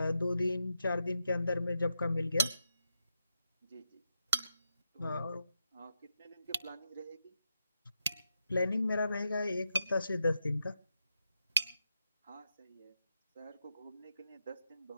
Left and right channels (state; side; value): inverted; both; correlation -0.85